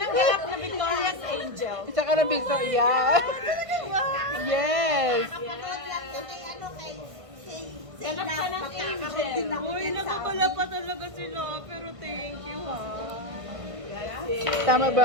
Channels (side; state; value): left; late; 1.5 ms